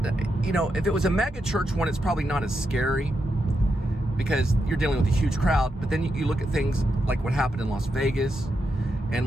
if it was a mega church one, it's probably not as scary because you're dealing with a huge crowd. But then you look at things like what happened in Las Vegas. And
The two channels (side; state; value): both; normal; correlation 0.85